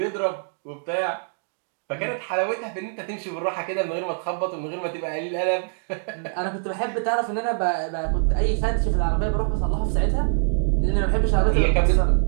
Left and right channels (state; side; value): silent; left; digital silence